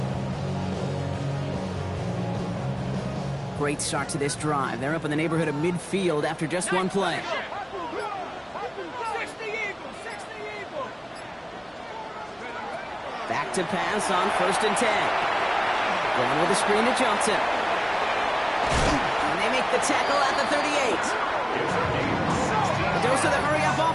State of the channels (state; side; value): identical; both; correlation 1.00